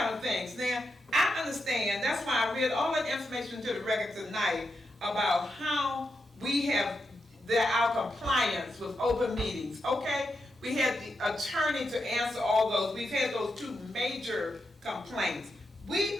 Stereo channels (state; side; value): normal; both; correlation 0.85